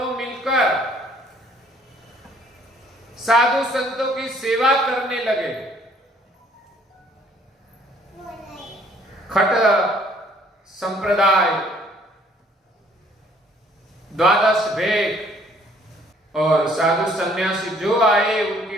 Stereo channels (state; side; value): normal; both; correlation 0.61